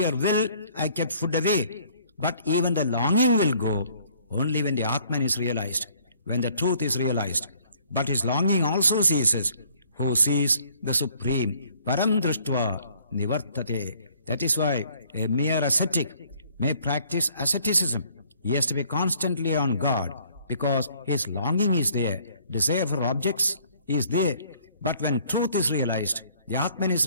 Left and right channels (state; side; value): inverted; both; correlation -0.60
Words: will, I kept food away. But even the longing will go only when the Atman is realized, when the truth is realized. But his longing also ceases. Who sees the Supreme? Param Drishtva Nivartate. That is why a mere ascetic may practice asceticism. He has to be constantly on guard because his longing is there. Desire for objects is there. But when truth is realized, the Atman is